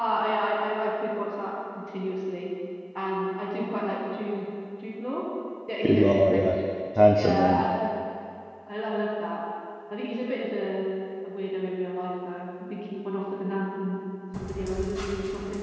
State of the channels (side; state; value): both; identical; correlation 1.00